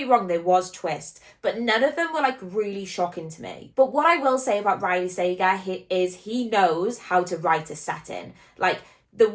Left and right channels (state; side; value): identical; both; correlation 1.00